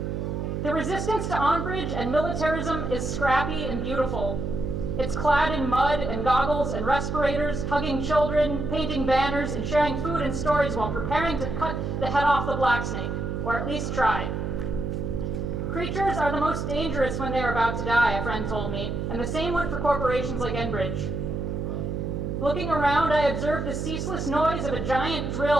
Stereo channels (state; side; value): noise; right; hum, 3 dB below the sound